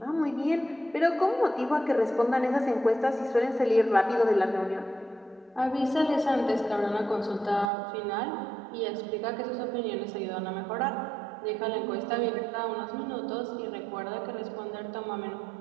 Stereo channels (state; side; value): drops out; left; at 7.7 s